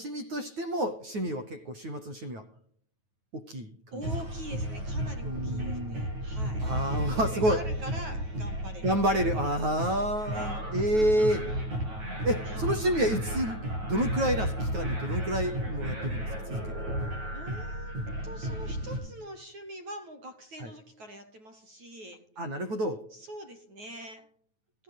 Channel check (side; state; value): left; late; 9.3 ms